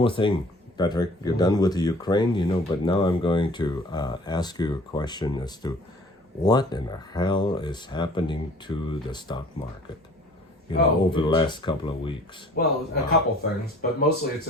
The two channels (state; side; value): normal; both; correlation 0.51